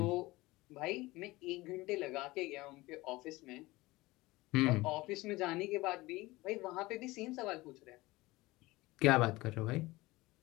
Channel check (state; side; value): quieter; right; 20.3 dB